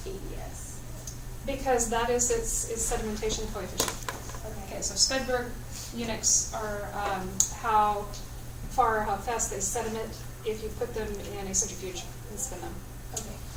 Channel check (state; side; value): identical; both; correlation 1.00